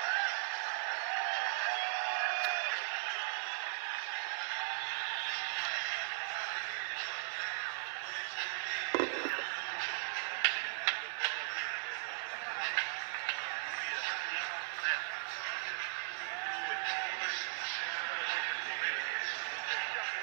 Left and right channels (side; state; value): left; silent; digital silence